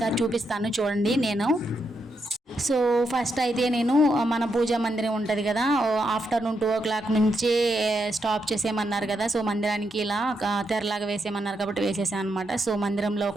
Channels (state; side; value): normal; both; correlation 0.81